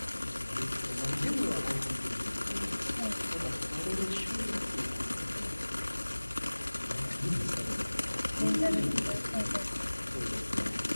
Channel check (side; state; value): both; inverted; correlation -1.00